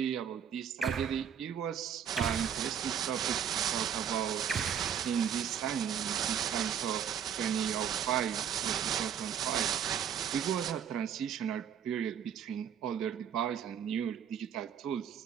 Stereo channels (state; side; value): quieter; left; 8.6 dB